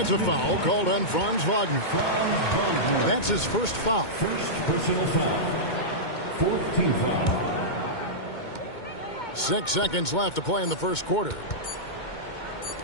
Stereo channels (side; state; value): right; late; 2.2 ms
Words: a foul called on Franz Wagner. That's his first foul. First personal foul. 4th team foul. 6 seconds left to play in the first quarter.